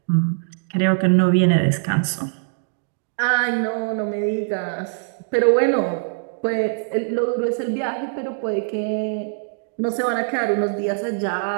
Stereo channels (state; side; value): silent; left; digital silence